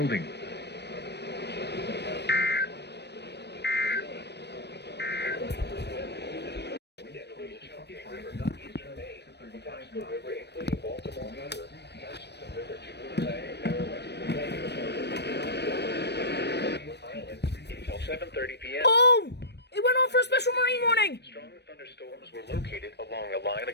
Oh! It went on for a special Marine warning! Strong thunderstorms were located along a line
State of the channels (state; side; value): late; right; 0.49 ms